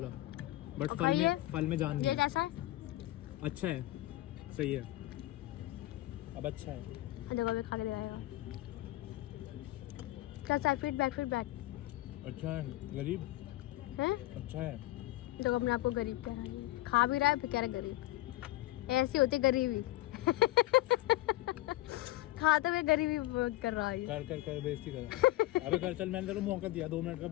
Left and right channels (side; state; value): right; quieter; 17.5 dB